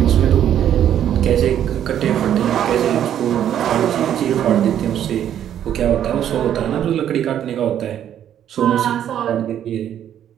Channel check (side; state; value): left; quieter; 10.3 dB